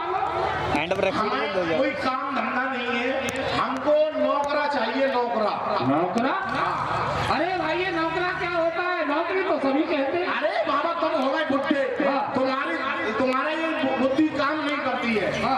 हमें कोई काम धंधा नहीं है, हमको नौकरा चाहिए, नौकरा। नौकरा? अरे भाई ये नौकरा क्या होता है? नौकरी तो सभी कहते हैं। अरे बाबा तुम हो गए बुढ़े, तुम्हारा ये बुद्धि काम नहीं करती है।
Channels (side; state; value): both; identical; correlation 1.00